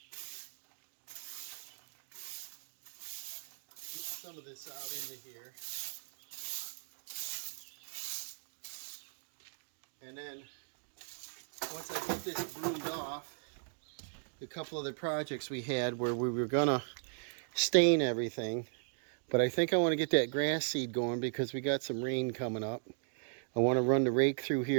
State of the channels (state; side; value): silent; left; digital silence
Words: Get some of this out into here. And then once I get this broomed off, a couple other projects we had where we were gonna stain everything, but I think I want to get that grass seed going because we got some rain coming up. I want to run the rake through